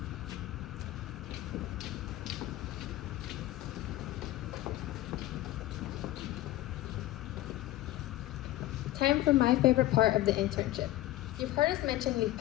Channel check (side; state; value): right; quieter; 15.7 dB